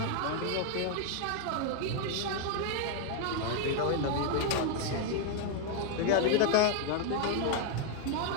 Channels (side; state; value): both; different; correlation 0.00